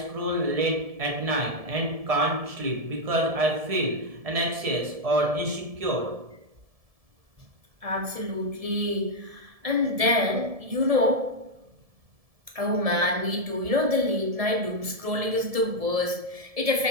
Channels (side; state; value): left; late; 1.7 ms